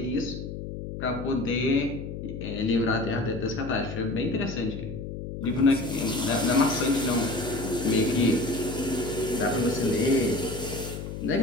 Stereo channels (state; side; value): noise; left; hum, 7 dB below the sound